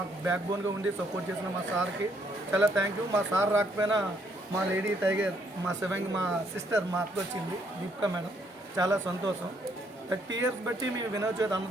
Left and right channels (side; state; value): both; normal; correlation 0.70